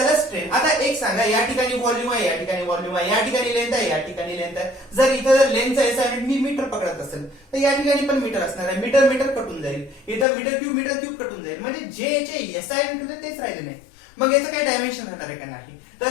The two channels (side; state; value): right; drops out; at 10.2 s